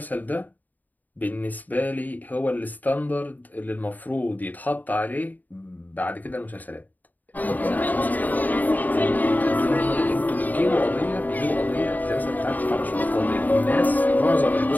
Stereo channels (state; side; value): late; right; 0.083 ms